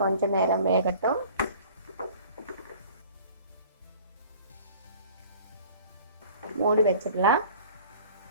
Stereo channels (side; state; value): both; inverted; correlation -0.48